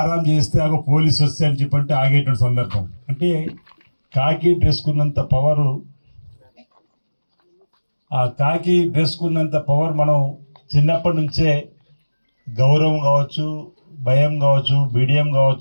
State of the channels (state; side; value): inverted; both; correlation -1.00